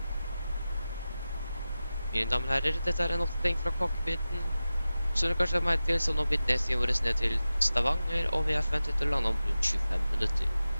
mine damer og herrer, dette er en oppdatering fra cockpiten. Som dere kanskje har merket til, så nå blir nedstien vår ned til Stavanger, og vi er forventet til å lande om rundt 25 minutter.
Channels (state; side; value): inverted; both; correlation -0.94